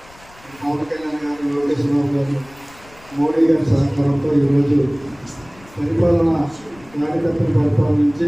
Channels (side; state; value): left; noise; rumble, 25 dB below the sound